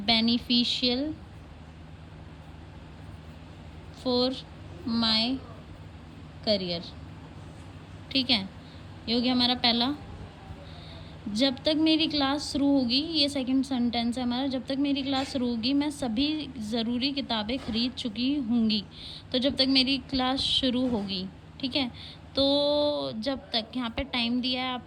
for my career, ठीक है। ये हो गया हमारा पहला। जब तक मेरी क्लास शुरू होगी, ये सेकंड सेंटेंस है हमारा, जब तक मेरी क्लास शुरू होगी मैं सभी ज़रूरी किताबें खरीद चुकी होंगी। तो जब तक मेरी क्लास शुरू होगी, ठीक है। तो जब तक, यहाँ पे टाइम दिया है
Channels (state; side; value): identical; both; correlation 1.00